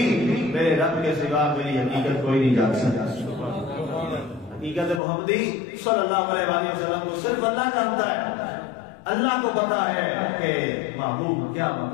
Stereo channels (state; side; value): drops out; right; at 5.0 s